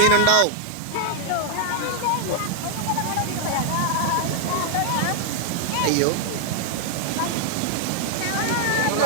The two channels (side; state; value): both; different; correlation 0.00